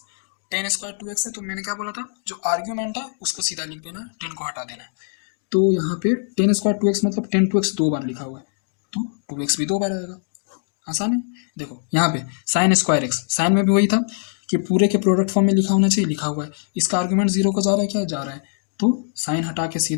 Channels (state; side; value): silent; right; digital silence